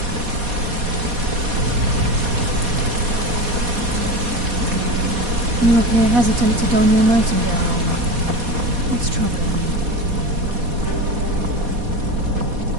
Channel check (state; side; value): late; left; 4.2 ms